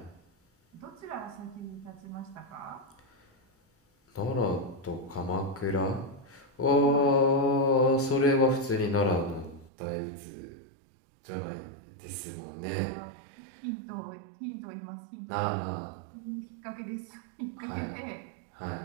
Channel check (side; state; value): left; drops out; at 9.7 s